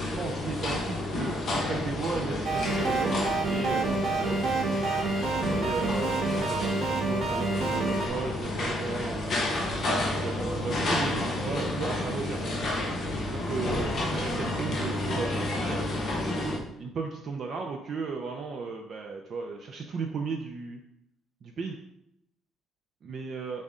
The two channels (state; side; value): normal; both; correlation 0.71